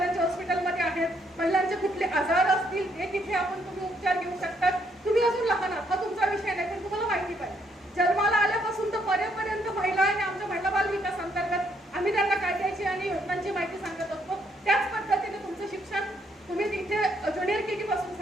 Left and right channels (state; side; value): normal; both; correlation 0.71